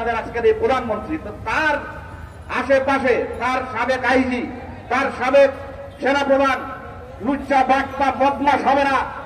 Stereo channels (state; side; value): identical; both; correlation 1.00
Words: আজকের এই প্রধানমন্ত্রী। তো তার আশেপাশে তার সাবেক আইজি, তার সাবেক সেনাপ্রধান লুচ্চা বাটপা বদমাশ হবে না,